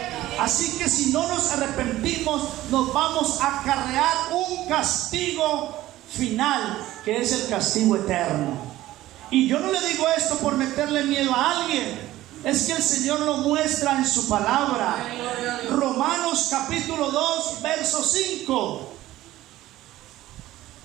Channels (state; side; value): quieter; left; 15.5 dB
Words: Así que si no nos arrepentimos, nos vamos a acarrear un castigo final, que es el castigo eterno. Y yo no le digo esto por meterle miedo a alguien, es que el Señor lo muestra en su palabra. Romanos capítulo 2, verso 5.